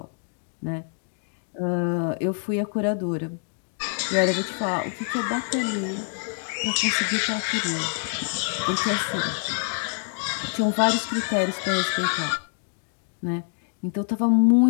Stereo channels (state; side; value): silent; right; 61 dB below the other